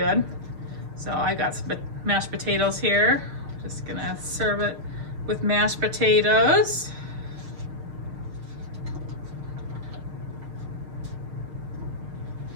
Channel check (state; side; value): late; left; 6.5 ms